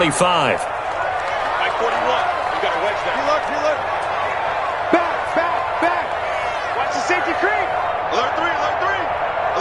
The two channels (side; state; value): both; identical; correlation 1.00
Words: Watch the safety creep. Alert 3, alert 3.